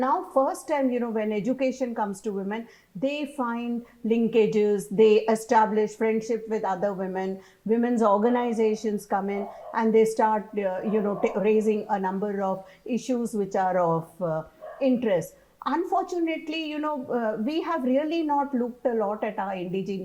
first time, you know, when education comes to women, they find linkages, they establish friendship with other women, women's organizations come in, and they start, raising a number of issues which are of interest. Unfortunately, you know, we have really not looked a lot at our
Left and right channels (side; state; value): both; identical; correlation 1.00